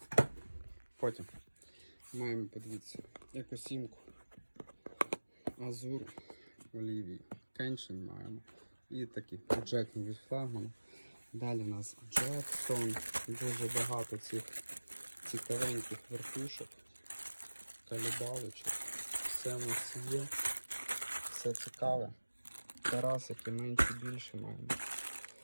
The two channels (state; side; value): inverted; both; correlation -1.00